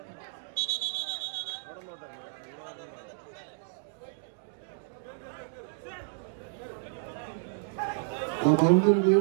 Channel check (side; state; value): left; silent; digital silence